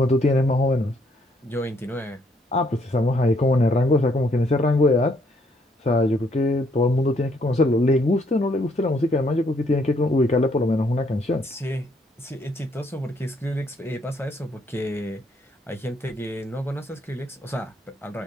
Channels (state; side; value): normal; both; correlation 0.69